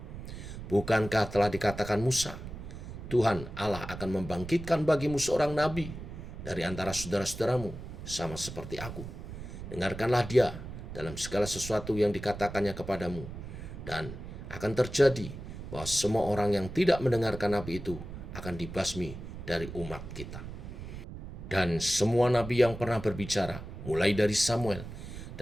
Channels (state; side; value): noise; right; rumble, 10 dB below the sound